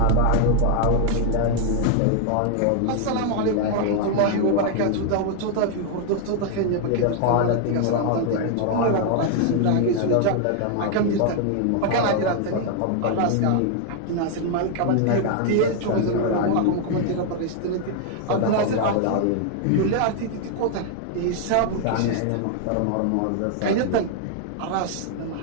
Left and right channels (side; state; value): both; different; correlation 0.00